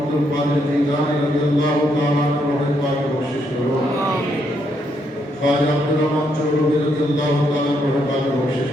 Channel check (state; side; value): normal; both; correlation 0.76